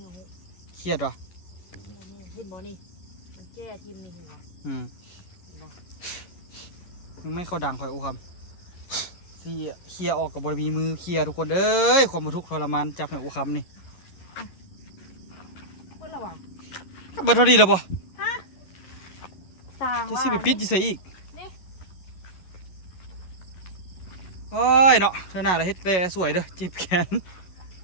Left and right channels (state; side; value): late; right; 11 ms